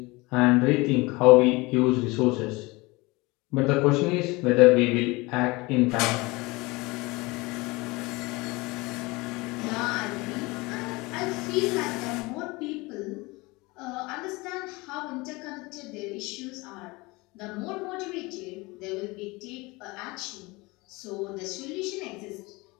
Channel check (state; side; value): quieter; right; 23.8 dB